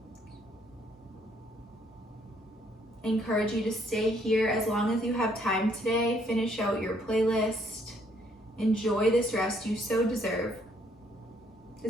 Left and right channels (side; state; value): both; normal; correlation 0.68